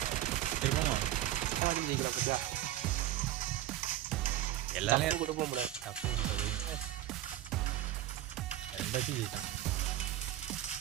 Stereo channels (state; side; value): quieter; left; 13.2 dB